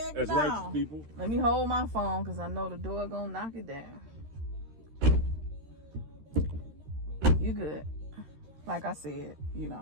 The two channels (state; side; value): late; left; 13 ms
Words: as no. Righteous people. Let me hold my phone because I know the door gonna knock it down. You good. Like I said,